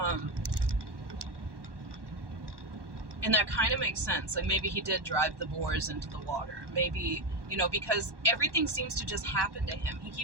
And that kind of makes sense. Like, maybe he did drive the boars into the water. Maybe, because everything seems to just happen to him. He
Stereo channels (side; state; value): left; late; 1.1 ms